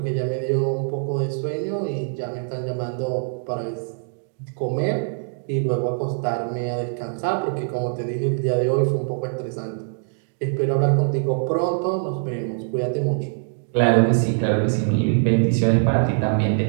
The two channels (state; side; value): silent; left; digital silence